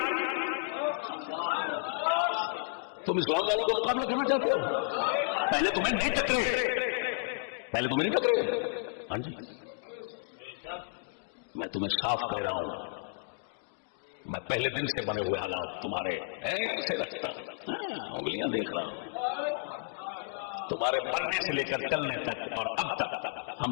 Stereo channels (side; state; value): right; silent; digital silence